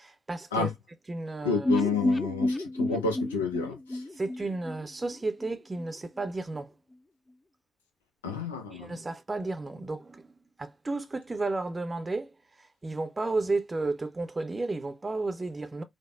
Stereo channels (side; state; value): both; normal; correlation 0.73